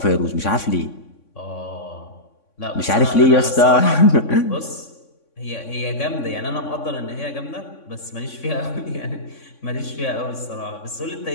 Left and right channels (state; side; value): late; right; 3.6 ms